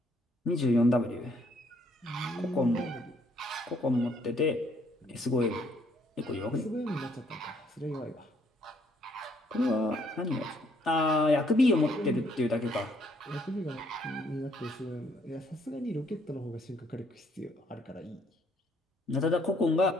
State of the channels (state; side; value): normal; both; correlation 0.67